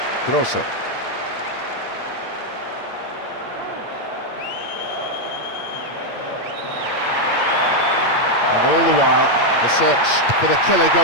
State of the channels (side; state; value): right; late; 8.6 ms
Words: Grosso. And all the while, the search for the killer